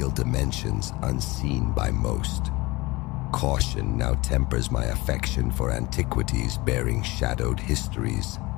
dimensions unseen by most. Caution now tempers my affection for antiquities bearing shadowed histories.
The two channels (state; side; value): quieter; right; 22.3 dB